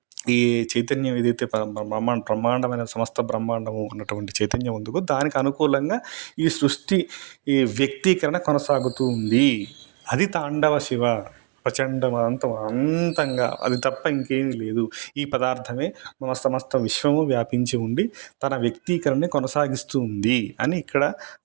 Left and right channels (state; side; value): quieter; left; 35.6 dB